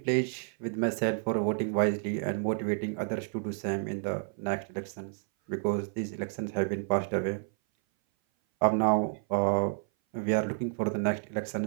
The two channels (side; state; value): left; silent; 57 dB below the other